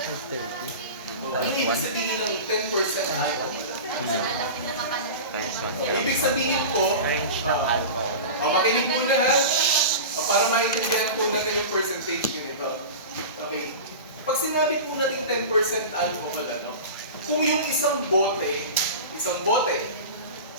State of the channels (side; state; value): both; inverted; correlation -0.30